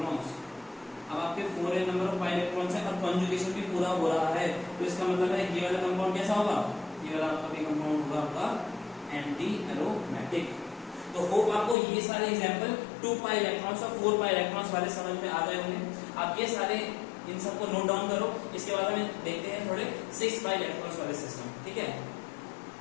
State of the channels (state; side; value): drops out; right; at 11.8 s